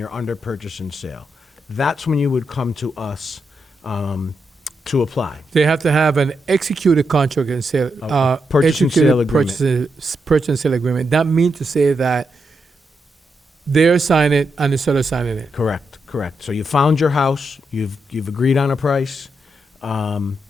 under purchase and sale. That's when you would come to us to apply. They have to have an executed contract and sale, purchase and sale agreement. Purchase and sale agreement. That means to say that they're signing it and the seller signing it. Correct. So you found your house, you've agreed on a price, and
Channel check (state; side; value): normal; both; correlation 0.83